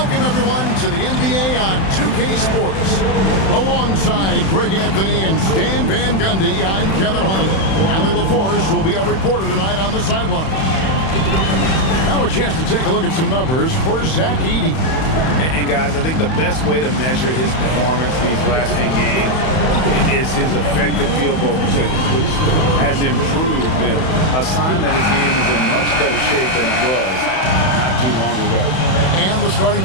everyone, to the NBA on 2K Sports. Alongside Greg Anthony and Stan Van Gundy, I'm Kevin Harlan. Allie LaForce will be our reporter tonight on the sideline. Now a chance to take a look at some numbers for Zach Edey. And guys, I think the best way to measure his performance these last 10 games is his effective field goal percentage, which has improved, a sign that his game is in much better shape than it was not too long ago. And the starting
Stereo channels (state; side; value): late; right; 31 ms